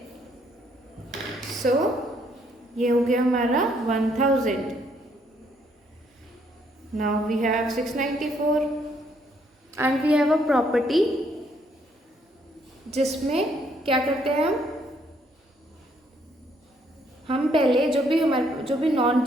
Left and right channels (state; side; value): normal; both; correlation 0.69